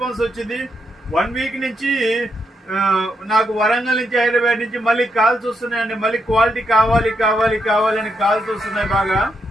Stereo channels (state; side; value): normal; both; correlation 0.80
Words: వచ్చింది. 1 వీక్ నుంచి నాకు వరంగల్ నుంచి, హైదరాబాద్ నుంచి మళ్ళీ కాల్స్ వస్తున్నాయండి. మళ్ళీ క్వాలిటీ కావాలి అని కాల్స్ వస్తున్నాయి బాగా.